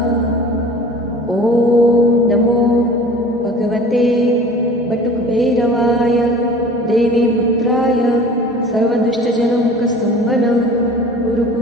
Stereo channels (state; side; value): normal; both; correlation 0.43